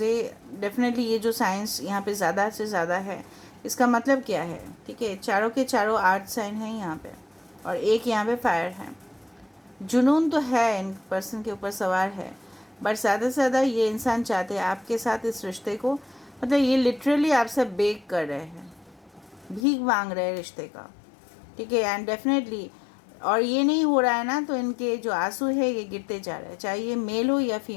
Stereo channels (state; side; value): drops out; right; at 19.7 s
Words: ये डेफिनेटली ये जो साइंस यहाँ पे ज़्यादा से ज़्यादा है, इसका मतलब क्या है? ठीक है, चारों के चारों आर्ट साइन हैं यहाँ पे, और एक यहाँ पे फायर है। जुनून तो है, इन पर्सन के ऊपर सवार है, बट ज़्यादा से ज़्यादा ये इंसान चाहते हैं आपके साथ इस रिश्ते को, मतलब ये लिटरली आपसे बेग कर रहे हैं, भीख मांग रहे हैं रिश्ते का, ठीक है। एंड डेफिनेटली, और ये नहीं हो रहा है ना, तो इनके जो आंसू है ये गिरते जा रहे हैं, चाहे ये मेल हो या